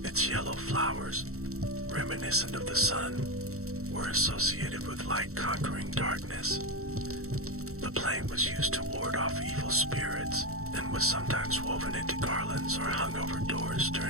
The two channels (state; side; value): late; left; 0.64 ms